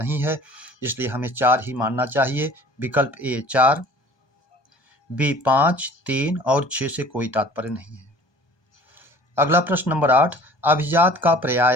है, इसलिए हमें 4 ही मानना चाहिए। विकल्प ए 4, बी 5, 3 और 6 से कोई तात्पर्य नहीं है। अगला प्रश्न नंबर 8, अभिजात का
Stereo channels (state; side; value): late; right; 1.2 ms